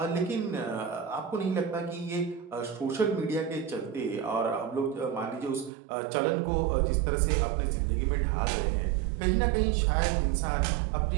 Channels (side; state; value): left; drops out; at 5.7 s